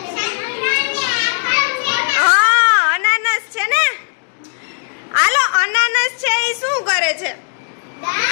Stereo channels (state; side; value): silent; right; digital silence